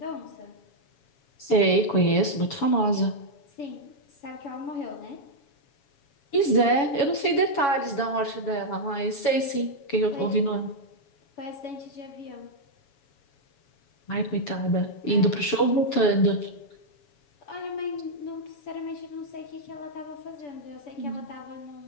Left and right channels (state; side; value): late; right; 7.2 ms